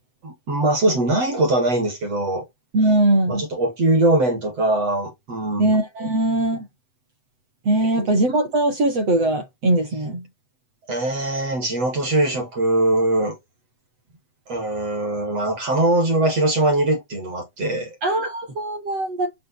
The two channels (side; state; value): left; late; 7.9 ms